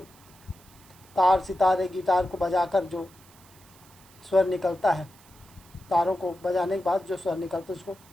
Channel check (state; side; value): noise; right; hiss, 26 dB below the sound